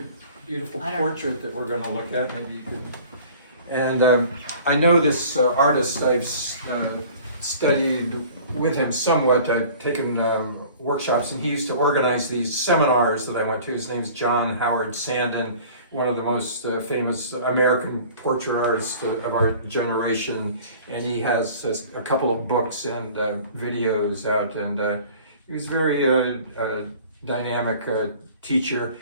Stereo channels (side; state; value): both; inverted; correlation -0.47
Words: beautiful portrait that we're going to look at. Maybe you could. And I know this artist. I've studied with him somewhat. I've taken workshops, and he used to organize these seminars that I went to. His name's John Howard Sandon, one of the most famous American portrait artists of our generation, and he has a couple of books and videos out, and he was a very dynamic teacher.